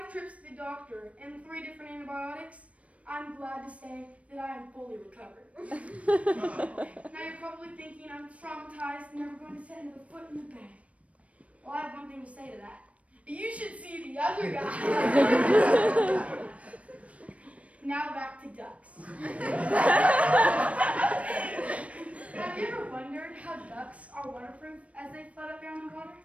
trips to the doctor, and 3 different antibiotics, I'm glad to say that I am fully recovered. Now you're probably thinking I'm traumatized and never going to set another foot in the bag. Well, I have one thing to say to that. You should see the other guy. Now back to ducks. Have you ever wondered how ducks are waterproof as they float up there in the water?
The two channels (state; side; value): late; left; 0.065 ms